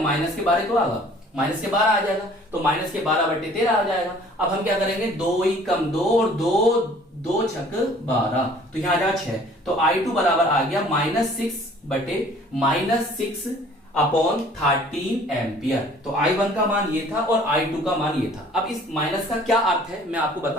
के 12 तो आएगा, माइनस के 12 आ जाएगा, तो माइनस के 12/13 आ जाएगा। अब हम क्या करेंगे, 2 ही कम 2 और 2 छक 12, तो यहाँ आ जाएगा 6। तो i2 बराबर आ गया -6/13 एम्पियर। तो i1 का मान ये था और i2 का मान ये था। अब इस माइनस का क्या अर्थ है मैं आपको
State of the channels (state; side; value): normal; both; correlation 0.53